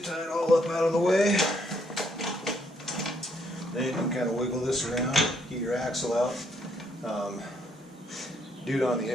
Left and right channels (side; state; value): both; normal; correlation 0.71